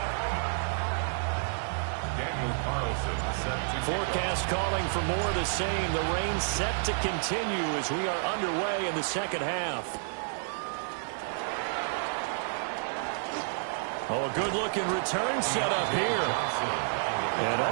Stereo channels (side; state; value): left; silent; digital silence